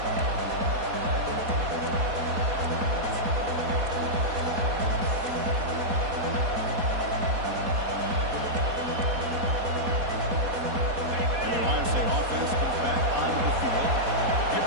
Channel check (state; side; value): late; left; 4.2 ms